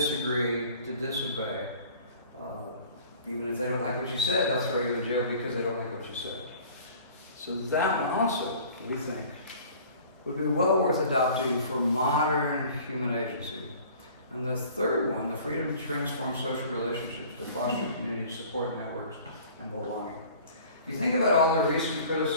to disobey. Even if they don't like what you said, they'll throw you in jail because they don't like what you said. So that one also, we think, would be well worth adopting for modern human agency. And the third one, the freedom to transform social relationships, to foster community support networks and belonging. If you think about all the recent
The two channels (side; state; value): both; inverted; correlation -0.48